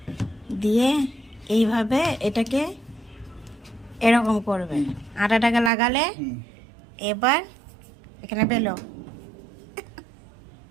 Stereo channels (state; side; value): drops out; left; at 5.7 s